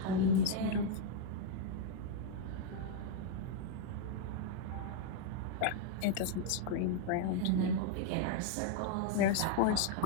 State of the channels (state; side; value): different; both; correlation 0.00